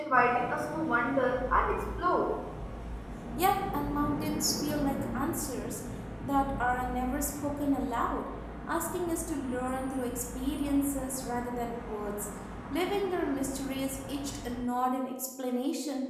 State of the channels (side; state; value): both; identical; correlation 1.00